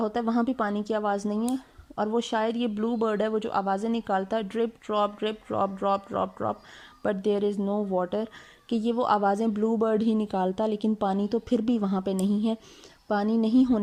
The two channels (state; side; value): identical; both; correlation 1.00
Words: होता है, वहाँ भी पानी की आवाज़ नहीं है। और वो शायद ये ब्लू बर्ड है वो जो आवाज़ें निकालता है, drip drop drop drop drop, but there is no water, कि ये वो आवाज़ें ब्लू बर्ड ही निकालता, लेकिन पानी तो फिर भी वहाँ पे नहीं है। पानी नहीं